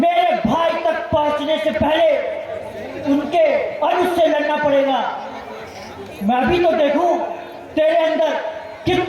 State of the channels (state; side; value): identical; both; correlation 1.00